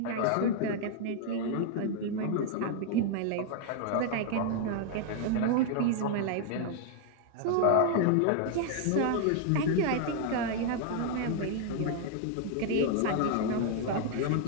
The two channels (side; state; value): both; different; correlation 0.00